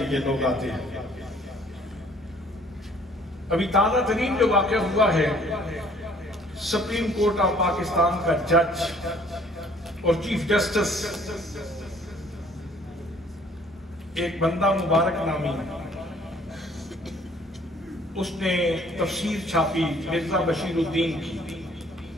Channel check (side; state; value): both; normal; correlation 0.58